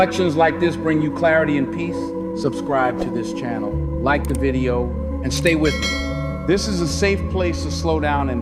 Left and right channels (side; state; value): both; identical; correlation 1.00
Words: like this bring you clarity and peace, subscribe to this channel, like the video, and stay with me. This is a safe place to slow down